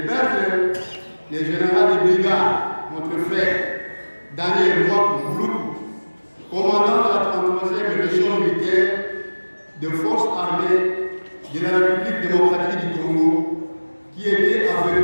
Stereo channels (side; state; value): both; inverted; correlation -1.00